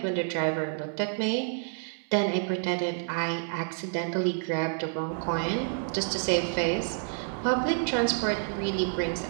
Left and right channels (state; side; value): silent; left; 59 dB below the other